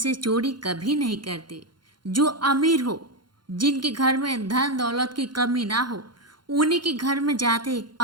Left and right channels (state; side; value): late; left; 0.71 ms